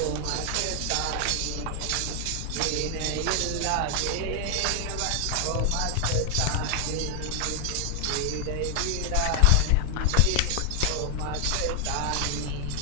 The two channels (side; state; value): both; different; correlation 0.00